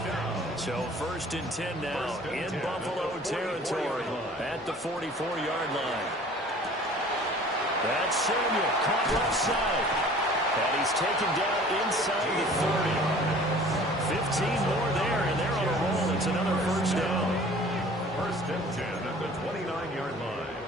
So 1st and 10 now in Buffalo territory at the 44-yard line. That's Samuel, caught left side. And he's taken down inside the 30. 15 more there, and they're on a roll. It's another 1st down. 1st and 10 at the 29-yard line.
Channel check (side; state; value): both; normal; correlation 0.48